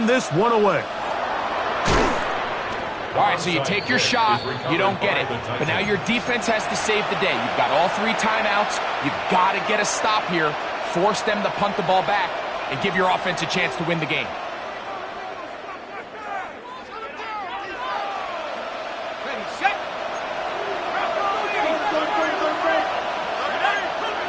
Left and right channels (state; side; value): identical; both; correlation 1.00